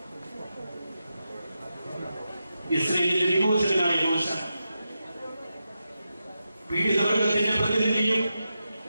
ഇസ്രായേലിന്റെ വിമോചകനായ മോശ പീഡിതവർഗത്തിന്റെ പ്രതിനിധിയും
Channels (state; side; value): inverted; both; correlation -0.88